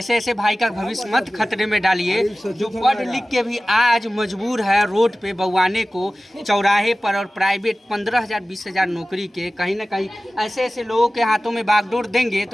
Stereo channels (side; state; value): both; normal; correlation 0.96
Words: भाई का भविष्य मत खतरे में डालिए, जो पढ़ लिख के भी आज मजबूर है रोड पे बउआने को, चौराहे पर, और प्राइवेट 15,000 20,000 नौकरी के। कहीं ना कहीं ऐसे लोगों के हाथों में बागडोर देंगे